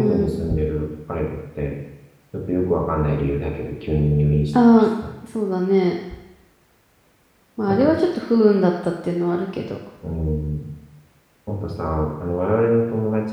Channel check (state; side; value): identical; both; correlation 1.00